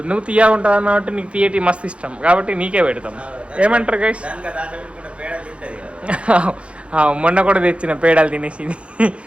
నువ్వు తీయగా ఉంటుంది అన్న కాబట్టి నీకు తీయటి మస్తు ఇష్టం కాబట్టి నీకే పెడతాం. ఏమంటారు గైస్? మొన్న కూడా తెచ్చిన పేడాలు తినేసింది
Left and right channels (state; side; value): late; left; 0.060 ms